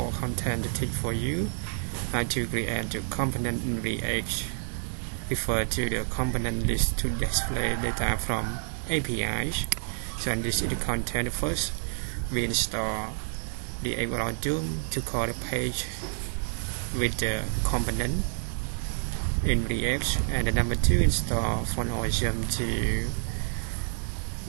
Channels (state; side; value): silent; left; 59 dB below the other